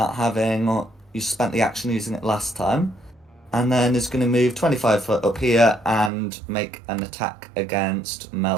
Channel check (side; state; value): left; drops out; at 6.1 s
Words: you spent the action using it last time, and then is gonna move 25 foot up here and make an attack against